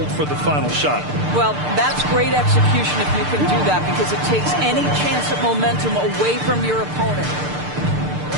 for the final shot. Well, that's great execution if you can do that, because it takes any chance at momentum away from your opponent.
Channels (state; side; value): late; left; 6.7 ms